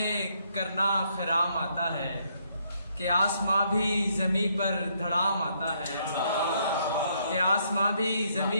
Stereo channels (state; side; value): inverted; both; correlation -0.72